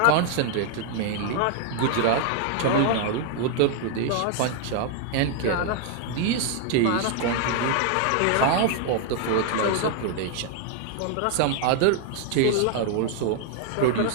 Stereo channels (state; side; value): different; both; correlation 0.00